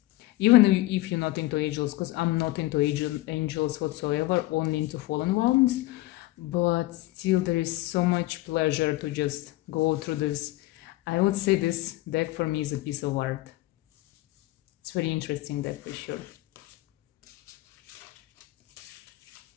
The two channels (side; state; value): right; quieter; 18.3 dB